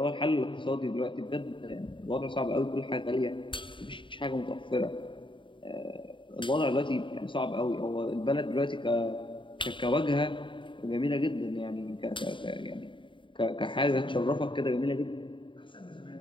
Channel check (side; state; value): right; late; 0.24 ms